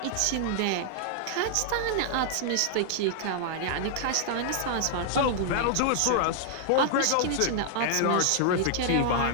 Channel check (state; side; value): different; both; correlation -0.01